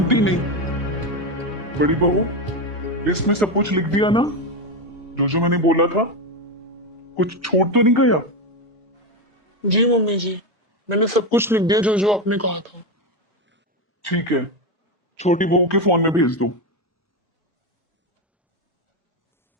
नहीं। बड़ी बहू, लिस्ट में सब कुछ लिख दिया ना, जो मैंने बोला था? कुछ छोड़ तो नहीं गया? जी मम्मी जी, मैंने सब कुछ लिख दिया जो आपने कहा था। ठीक है, छोटी बहू के फोन में भेज दो।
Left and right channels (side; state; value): both; normal; correlation 0.12